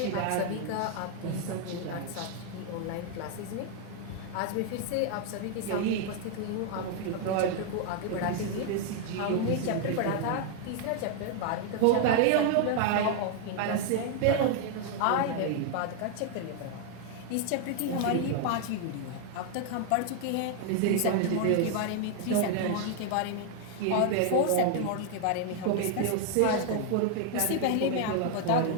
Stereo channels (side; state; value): both; different; correlation 0.00